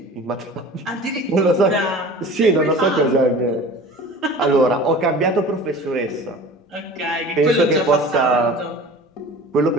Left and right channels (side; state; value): both; normal; correlation 0.41